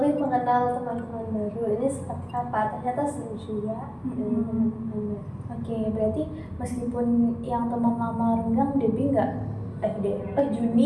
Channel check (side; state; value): both; identical; correlation 1.00